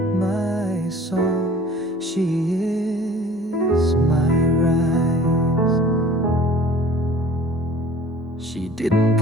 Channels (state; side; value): normal; both; correlation 0.48